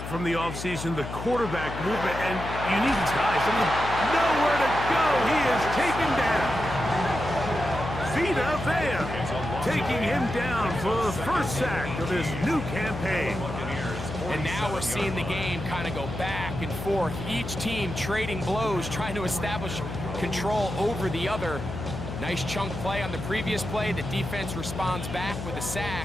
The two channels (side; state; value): left; noise; hum, 7 dB below the sound